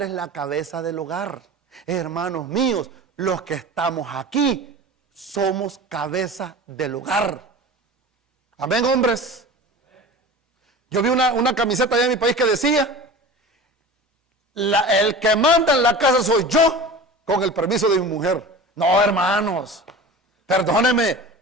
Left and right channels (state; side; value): normal; both; correlation 0.36